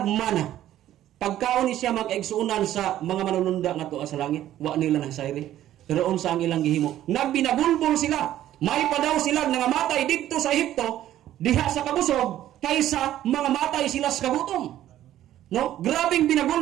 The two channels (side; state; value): left; quieter; 12.7 dB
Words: mana. Pagkaon ni siya mag-igsuunan sa mga manununda ngadto sa langit, wa nila nang sayri. Pero unsa ang ilang gihimo? Nagbinagulbol sila. May pa daw sila nga matay didto sa Ehipto diha sa kabusog kaysa mga matay sila sa kagutom. No? Grabing